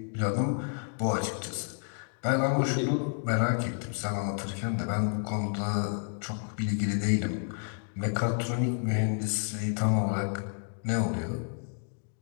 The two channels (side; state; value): right; silent; 55 dB below the other